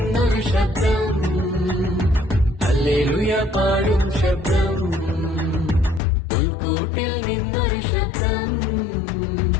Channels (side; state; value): right; drops out; at 6.0 s